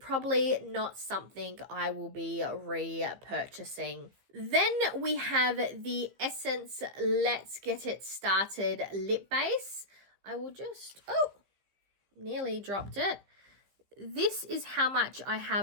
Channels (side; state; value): left; late; 15 ms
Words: not something I will be repurchasing. Then we have the Essence Let's Get It Started lip base. I will just, nearly dropped it. This is how much I